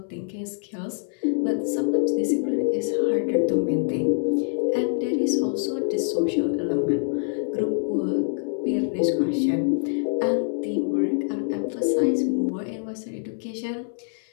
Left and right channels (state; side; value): silent; right; 62 dB below the other